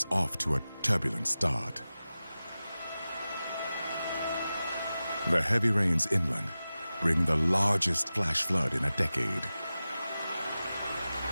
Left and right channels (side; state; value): both; inverted; correlation -0.95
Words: off to a turbulent start. The heavy rains inland bring the largest flash flood in a decade.